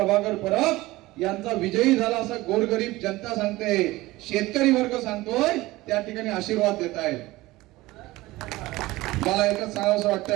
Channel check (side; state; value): left; quieter; 19.0 dB